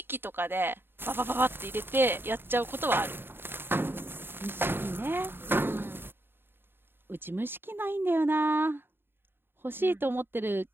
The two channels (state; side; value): late; left; 0.10 ms